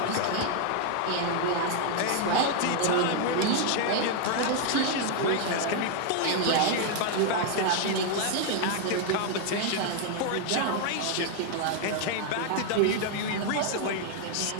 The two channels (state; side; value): different; both; correlation 0.00